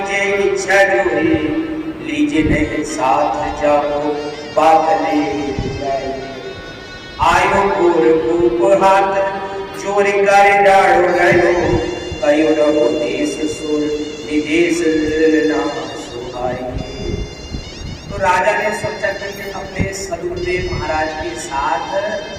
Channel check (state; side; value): identical; both; correlation 1.00